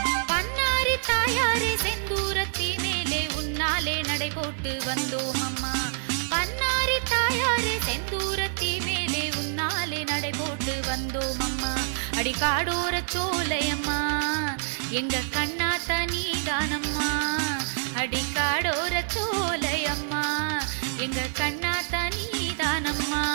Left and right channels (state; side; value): silent; left; digital silence